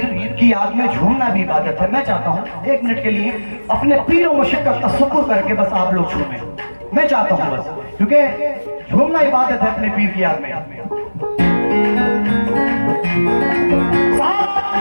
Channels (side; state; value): both; inverted; correlation -1.00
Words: की याद में झूमना भी इबादत है। मैं चाहता हूँ 1 मिनट के लिए अपने पीर और मुर्शिद का तसव्वुर करके बस आप लोग झूमें, मैं चाहता हूँ बस, क्योंकि झूमना इबादत है अपने पीर की याद में।